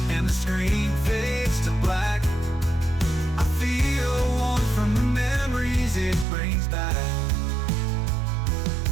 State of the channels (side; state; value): left; drops out; at 6.2 s